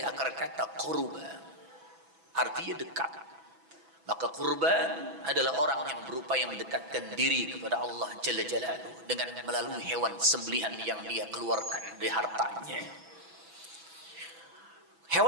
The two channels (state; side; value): late; left; 6.1 ms